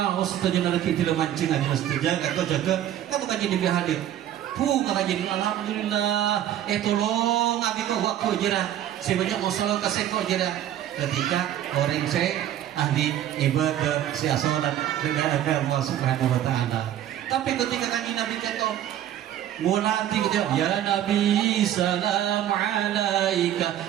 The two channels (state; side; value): quieter; left; 11.6 dB